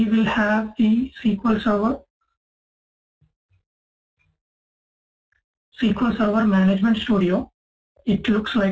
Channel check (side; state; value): both; identical; correlation 1.00